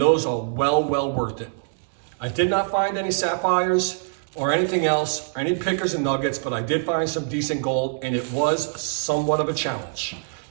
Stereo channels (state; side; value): silent; left; digital silence